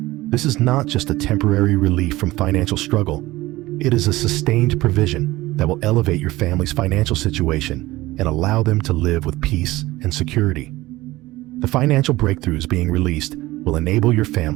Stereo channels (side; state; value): left; quieter; 18.5 dB